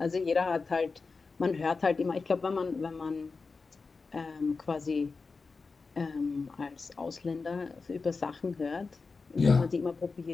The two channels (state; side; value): quieter; right; 4.3 dB